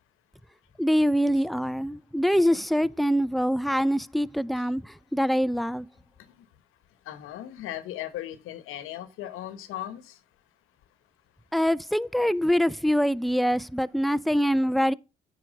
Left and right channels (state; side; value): normal; both; correlation 0.97